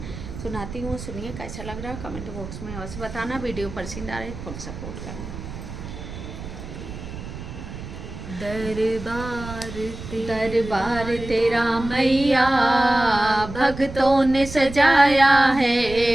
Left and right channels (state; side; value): noise; right; rumble, 11 dB below the sound